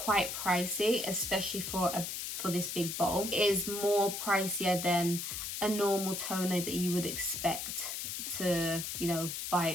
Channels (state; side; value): noise; left; hiss, 4 dB below the sound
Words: pricey, especially for this big bowl. It is more pricier than a normal toner that you would expect to, you know, buy